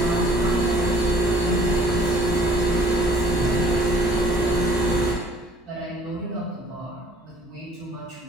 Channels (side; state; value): both; normal; correlation 0.56